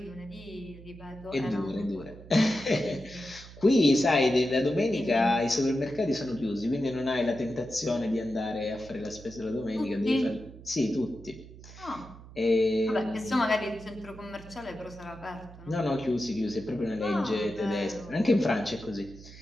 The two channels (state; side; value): noise; right; hum, 17 dB below the sound